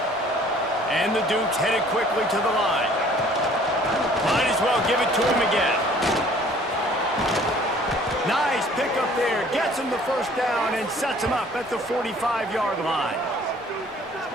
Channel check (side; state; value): both; normal; correlation 0.54